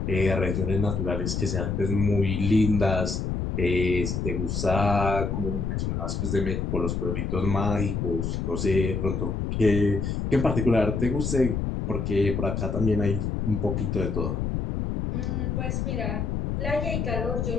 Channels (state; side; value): noise; left; rumble, 1 dB below the sound